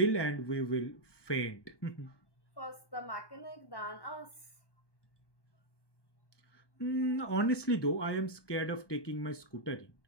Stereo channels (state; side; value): late; right; 1.2 ms